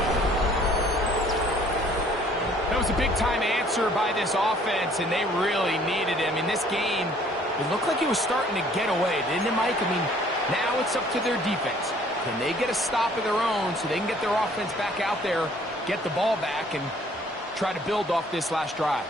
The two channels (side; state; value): both; normal; correlation 0.58